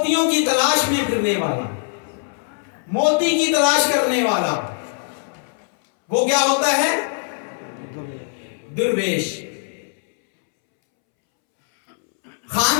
की तलाश में फिरने वाला, मोती की तलाश करने वाला, वो क्या होता है? दुर्वेश।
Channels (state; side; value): silent; right; 65 dB below the other